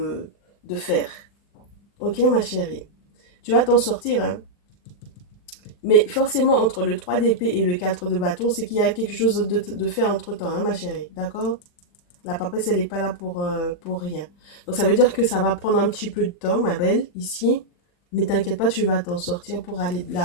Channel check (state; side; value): late; right; 40 ms